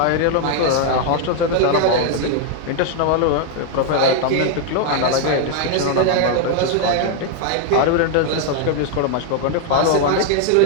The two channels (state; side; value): different; both; correlation 0.00